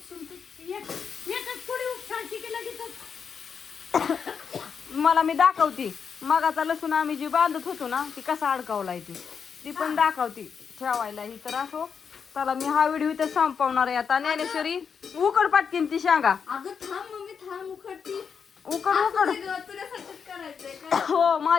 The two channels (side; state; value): right; quieter; 6.5 dB